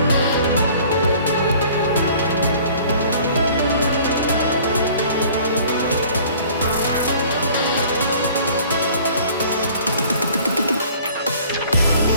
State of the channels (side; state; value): both; inverted; correlation -0.51